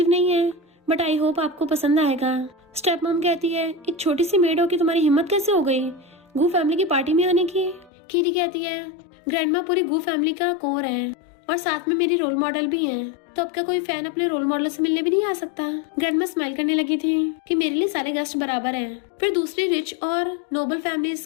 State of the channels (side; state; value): right; drops out; at 7.9 s